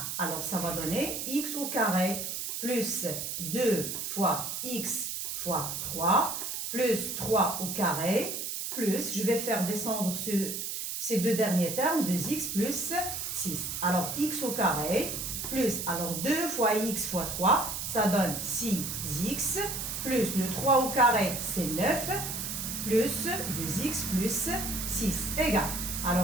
Alors, ça va donner x au carré plus 2 fois x fois 3, plus 3 au carré, plus, je vais faire descendre ces deux derniers termes, 2x plus 6. Alors, x au carré, plus, alors 2 fois x fois 3, ça donne 6x, plus le 3 au carré, c'est 9, plus 2x plus 6, égal.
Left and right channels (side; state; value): right; noise; hiss, 4 dB below the sound